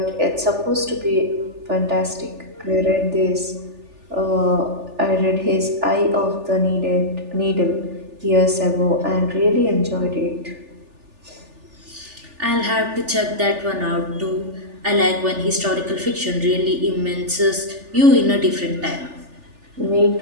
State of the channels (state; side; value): late; left; 3.4 ms